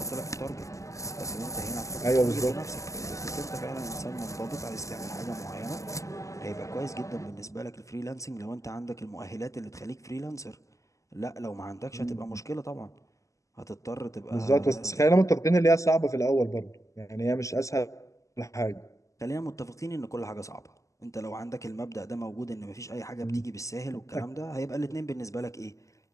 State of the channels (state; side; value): late; right; 0.16 ms